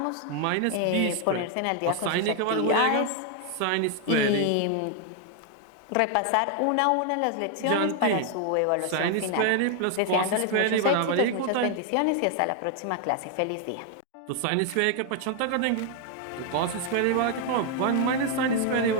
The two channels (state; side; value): different; both; correlation 0.00